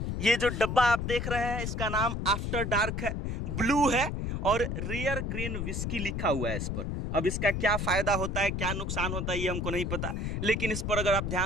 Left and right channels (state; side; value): noise; left; rumble, 2 dB below the sound